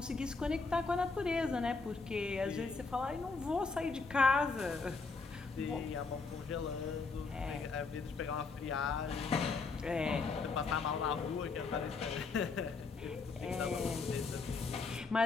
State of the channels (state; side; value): quieter; right; 4.3 dB